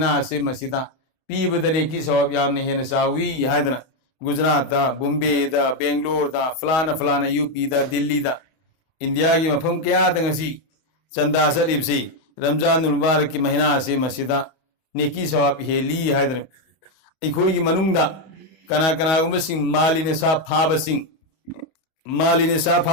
से मसीदा पीबदने की सवाब यामने हेन सावी हायदना गुजरात बॉम्बे बेंगलोर फलाना फलाना यूपी दिल्ली इंडिया की मफम क्या दंगसी चंदा चलिबसी रमजानुल मुबारक की महीना से मसीदा नेकी सवाब हेली हायदन अखोई की मनुंगदा कना कनागुम सिंह मालिने सा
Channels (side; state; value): right; late; 31 ms